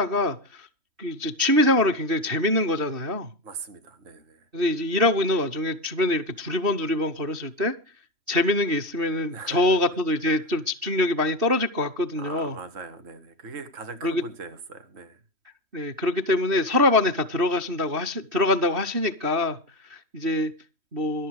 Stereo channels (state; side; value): late; left; 3.1 ms